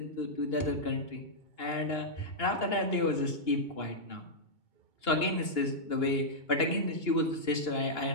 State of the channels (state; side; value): late; right; 2.9 ms